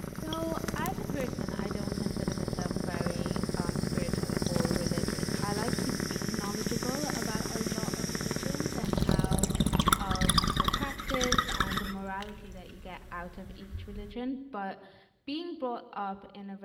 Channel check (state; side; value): identical; both; correlation 1.00